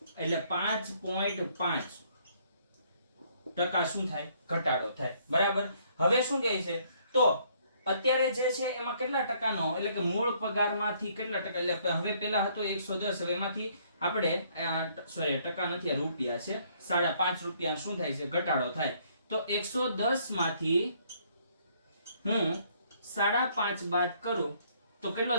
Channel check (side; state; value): both; inverted; correlation -0.65